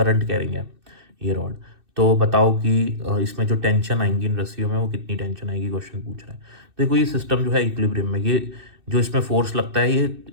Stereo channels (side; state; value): left; late; 2.6 ms